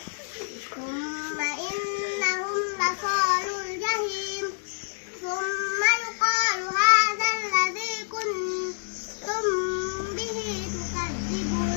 ثم إنهم لصالوا الجحيم ثم يقال هذا الذي كنتم به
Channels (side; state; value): right; silent; digital silence